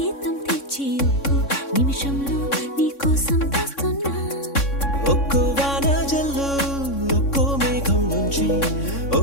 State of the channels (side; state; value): right; late; 3.6 ms